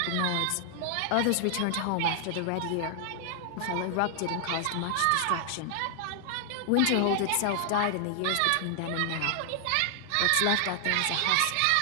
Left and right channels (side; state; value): both; different; correlation 0.00